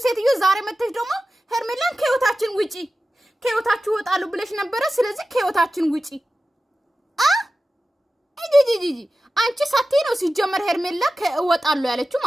ሴትዮ ዛሬ መተሽ ደግሞ ሄርሜላን ከህይወታችን ውጪ ከህይወታችሁ ወጣሉ ብለሽ ነበረ። ስለዚህ ከህይወታችን ውጪ ጂጂጂ አንቺ ሳቴ ነው ሲጀመር ሄርሜላ ከወጣሉ ያለችው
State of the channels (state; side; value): normal; both; correlation 0.94